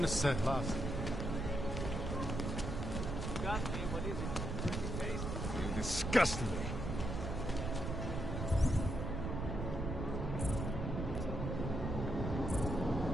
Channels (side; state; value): right; noise; rumble, 3 dB below the sound